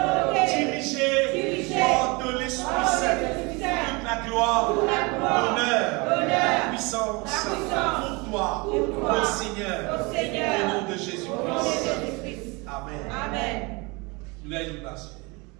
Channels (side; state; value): left; quieter; 27.2 dB